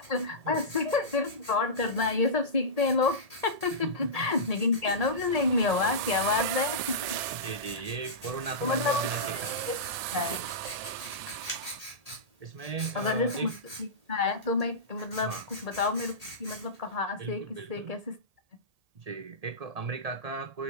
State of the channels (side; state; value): left; late; 1.8 ms